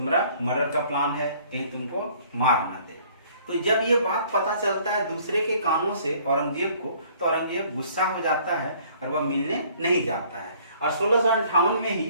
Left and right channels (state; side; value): inverted; both; correlation -0.57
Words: मर्डर का प्लान है, कहीं तुमको मार ना दे। तो जब ये बात पता चलता है दूसरे के कानों से औरंगजेब को, तो औरंगजेब गुस्सा हो जाता है और वह मिलने नहीं जाता है। और 1658 में